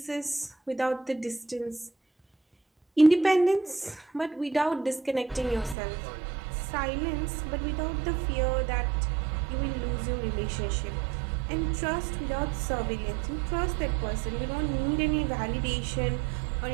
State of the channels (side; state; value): left; drops out; at 5.8 s